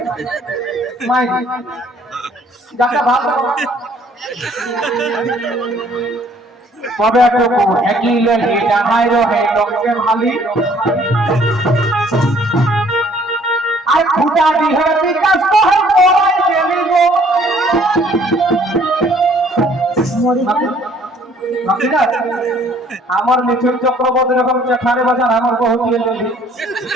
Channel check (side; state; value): both; normal; correlation 0.59